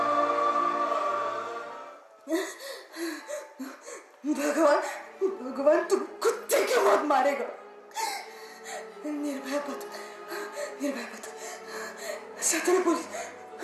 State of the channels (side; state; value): both; identical; correlation 1.00